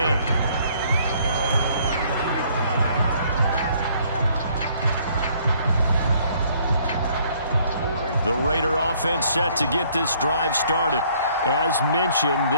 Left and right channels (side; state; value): both; inverted; correlation -0.62